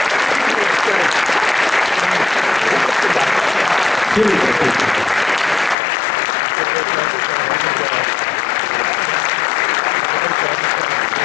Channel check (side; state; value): right; drops out; at 5.8 s